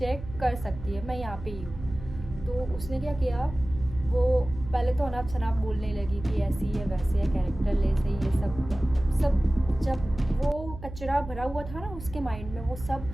कर सकती है, मैं यहाँ पे ही हूँ। तो उसने क्या किया, वो पहले तो अनाप शनाप बोलने लगी कि ऐसी है वैसे है, कैरेक्टर लेस है, ये सब। जब वो कचरा भरा हुआ था ना उसके माइंड में, वो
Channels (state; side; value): noise; right; hum, 12 dB below the sound